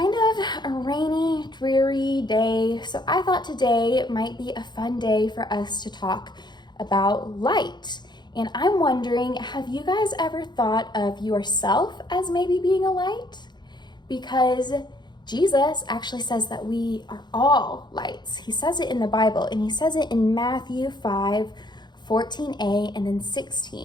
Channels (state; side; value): late; right; 0.21 ms